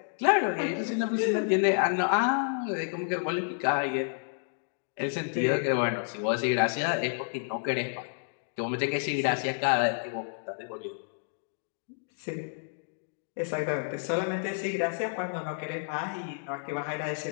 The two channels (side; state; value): right; silent; digital silence